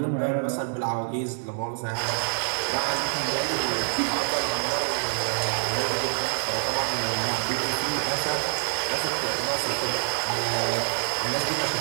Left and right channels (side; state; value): left; silent; digital silence